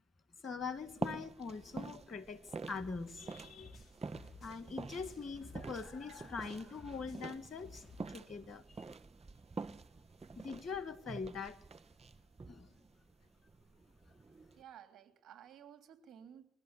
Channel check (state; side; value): normal; both; correlation 0.70